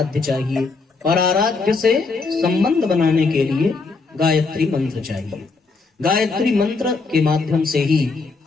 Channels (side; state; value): right; quieter; 4.1 dB